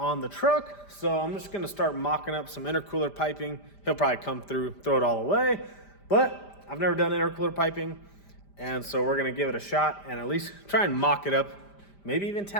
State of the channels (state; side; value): late; right; 5.0 ms